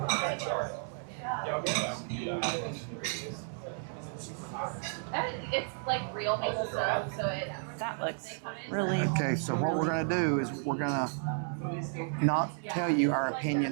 It's like real maple syrup, so it. That looks really. Okay, so what we're going to do is we're going to not tell you our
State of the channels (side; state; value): left; silent; 56 dB below the other